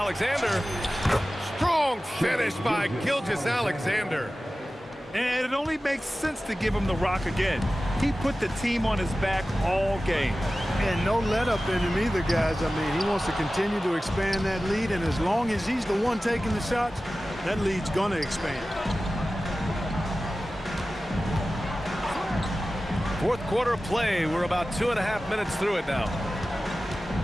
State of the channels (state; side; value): normal; both; correlation 0.95